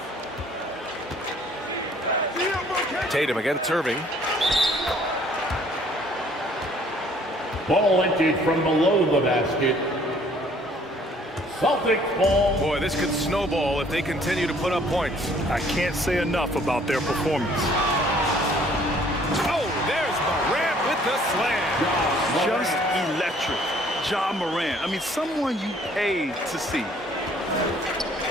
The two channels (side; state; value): both; normal; correlation 0.59